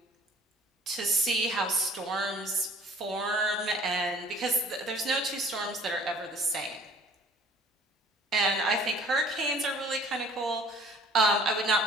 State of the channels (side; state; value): both; normal; correlation 0.51